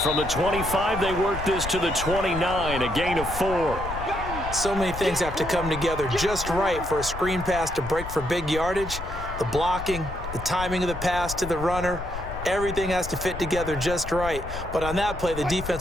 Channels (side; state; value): left; noise; rumble, 9 dB below the sound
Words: from the 25, they work this to the 29, a gain of 4. So many things have to come together just right for a screen pass to break for big yardage. The blocking, the timing of the pass to the runner, everything has to fit together just right. But on that play, the